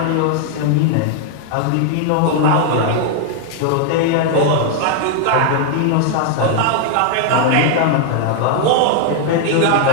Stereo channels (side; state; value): both; different; correlation 0.00